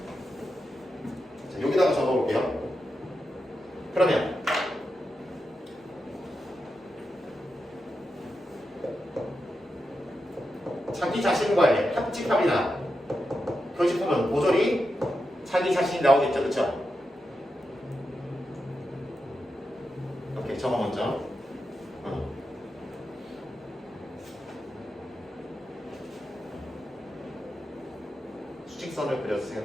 자, 여기다가 적어 볼게요. 그러면 자기 자신과의 합집합이나 교집합은 모조리 자기 자신이 나오겠죠, 그렇죠? 오케이, 저거 먼저. 수직선을 그려서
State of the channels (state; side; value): normal; both; correlation 0.88